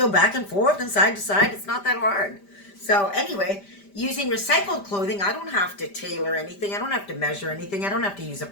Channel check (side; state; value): right; late; 5.1 ms